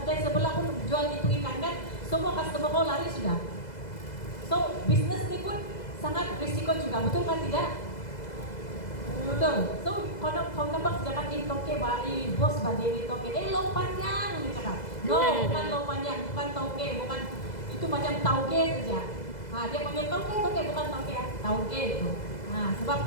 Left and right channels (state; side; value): late; right; 2.0 ms